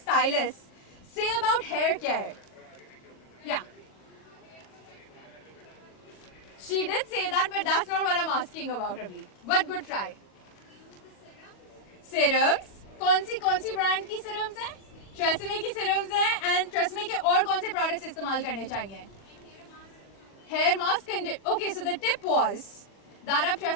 say about hair care? Yeah. She did say that, but that's not what I'm asking about abhi. But good try. Serums. कौन सी brand की serums हैं? TRESemmé की serums हैं. And TRESemmé के और कौन से products इस्तेमाल करने चाहिए? Hair mask. Okay, so the tip was that आप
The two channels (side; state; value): right; late; 40 ms